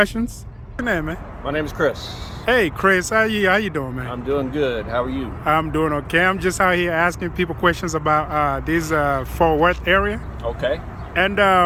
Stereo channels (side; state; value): both; identical; correlation 1.00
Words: What's your name, man? My name is Chris. Hey Chris, how you doing, man? I'm doing good. How are you? I'm doing okay. I'm just out here asking people questions about this Fort Worth area. Okay. And